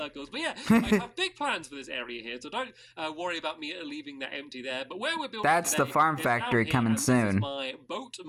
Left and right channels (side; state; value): both; identical; correlation 1.00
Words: But yeah, I have big plans for this area here, so don't worry about me leaving that empty there. But where we're building That's the farm factory coming soon. This is my boat,